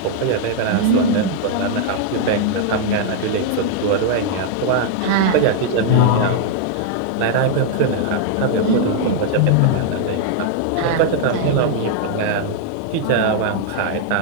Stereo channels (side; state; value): both; different; correlation 0.00